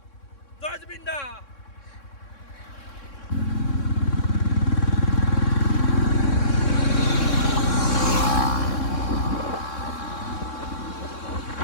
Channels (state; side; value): late; right; 3.6 ms